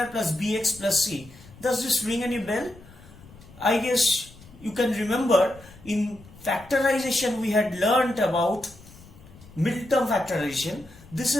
plus bx plus c. Does this ring any bell? I guess you can remember in factorization we had learnt about middle term factorization. This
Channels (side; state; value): left; noise; rumble, 22 dB below the sound